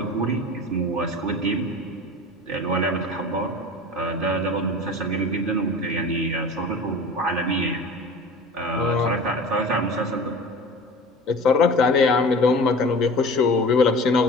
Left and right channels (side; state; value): both; normal; correlation 0.37